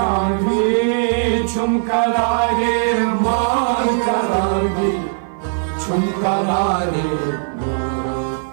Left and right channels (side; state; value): left; silent; 55 dB below the other